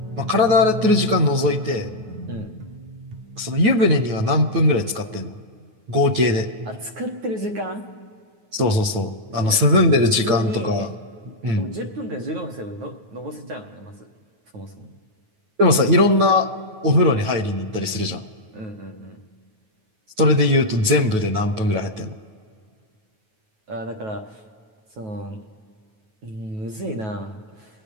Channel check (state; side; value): late; left; 9.3 ms